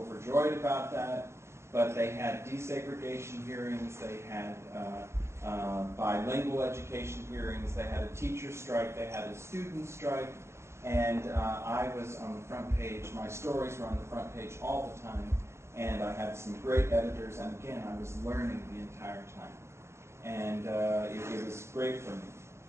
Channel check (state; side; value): late; left; 0.13 ms